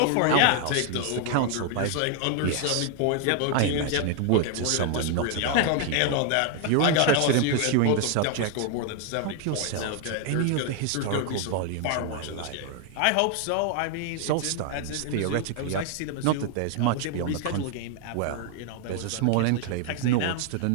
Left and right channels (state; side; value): different; both; correlation 0.00